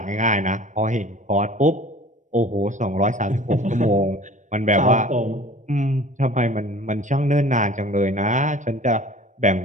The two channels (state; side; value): late; left; 0.36 ms